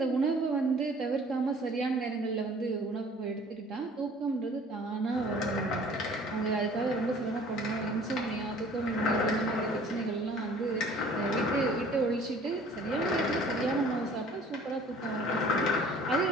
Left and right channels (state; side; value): normal; both; correlation 0.51